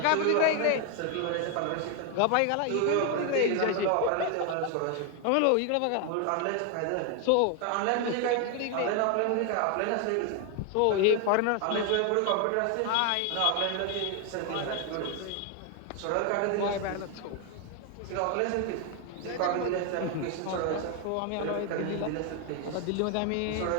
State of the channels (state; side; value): different; both; correlation 0.01